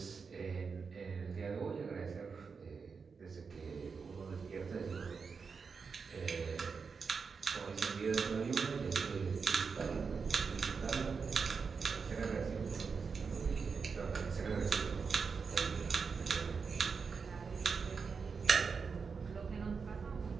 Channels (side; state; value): left; quieter; 5.4 dB